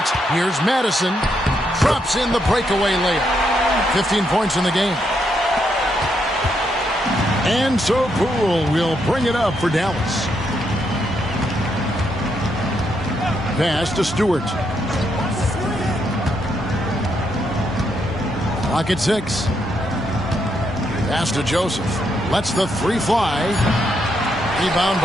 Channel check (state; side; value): normal; both; correlation 0.78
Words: Here's Madison. Drops in the breakaway layup. 15 points in the game. And so Poole will bring it up for Dallas. Pass to Stewart. Clock at 6. Pass to Joseph. Lets the three fly. Rebound